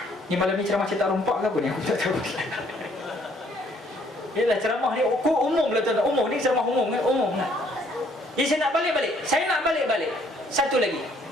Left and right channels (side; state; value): both; normal; correlation 0.64